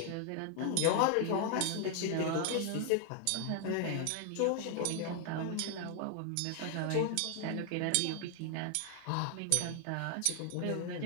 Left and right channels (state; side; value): different; both; correlation 0.00